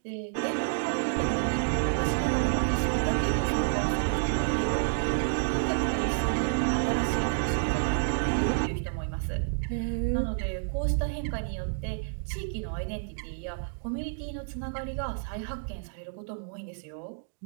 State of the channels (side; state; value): left; silent; digital silence